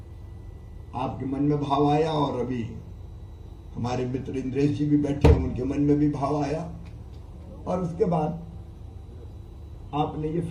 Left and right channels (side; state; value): both; identical; correlation 1.00